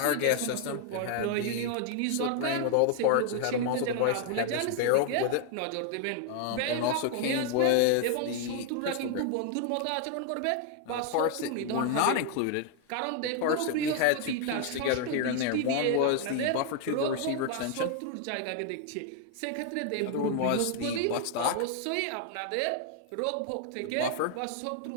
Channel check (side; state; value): both; different; correlation 0.00